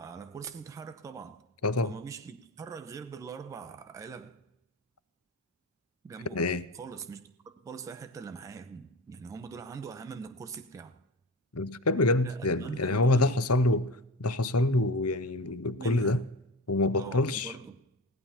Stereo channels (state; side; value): normal; both; correlation 0.30